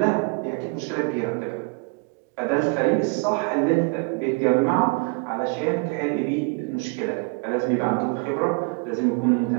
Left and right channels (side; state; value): left; quieter; 31.7 dB